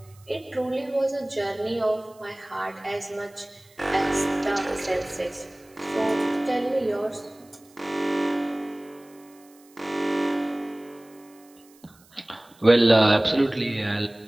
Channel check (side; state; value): right; noise; hiss, 28 dB below the sound